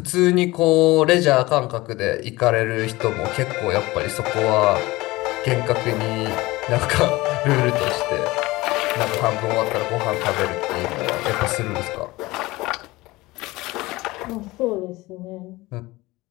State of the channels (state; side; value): quieter; right; 20.3 dB